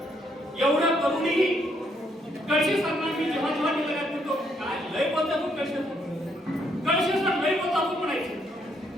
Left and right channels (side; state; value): both; normal; correlation 0.72